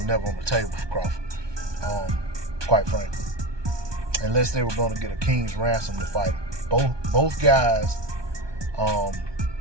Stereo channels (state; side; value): late; left; 1.2 ms